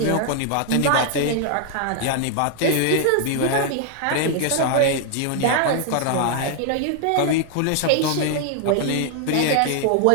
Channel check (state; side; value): different; both; correlation 0.00